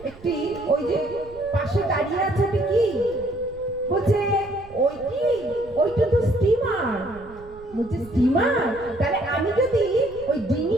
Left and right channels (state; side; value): noise; right; rumble, 21 dB below the sound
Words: একটি ওই যে পাশে দাঁড়িয়ে আছে কি বলছে, ওইটা তো স্টিমার, বলছে স্টিমার, তাহলে আমি যদি ওই ডিঙি